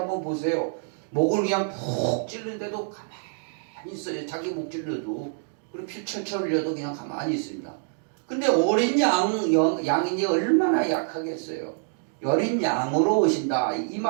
보세요. 목을 그냥 푹 찔르는데도 가만히 있어요. 자기 목 찔러도. 그리고 피 철철 흘려도 그냥 가만히 있습니다. 근데 어린 양이니 얼마나 약하겠어요. 어린 양으로 오신다. 이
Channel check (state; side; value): silent; left; digital silence